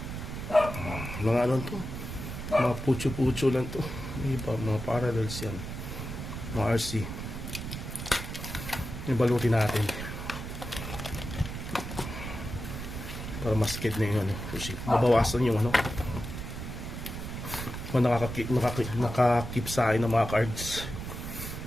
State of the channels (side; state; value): right; noise; rumble, 7 dB below the sound